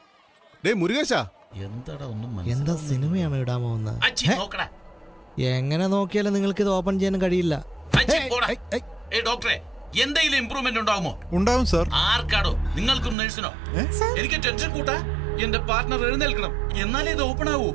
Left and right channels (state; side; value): drops out; left; at 13.2 s